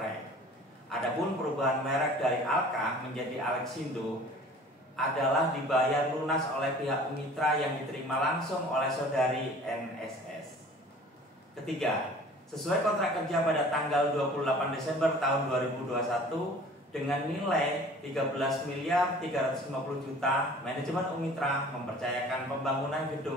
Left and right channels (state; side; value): normal; both; correlation 0.47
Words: Adapun perubahan merek dari Alka menjadi Alexindo adalah dibayar lunas oleh pihak Unmitra yang diterima langsung oleh saudari NSS. Ketiga, sesuai kontrak kerja pada tanggal 28 Desember tahun 2021 dengan nilai 13.350.000.000, manajemen Unmitra mempercayakan pembangunan